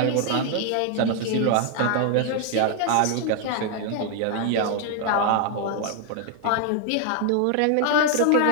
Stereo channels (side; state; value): both; different; correlation 0.00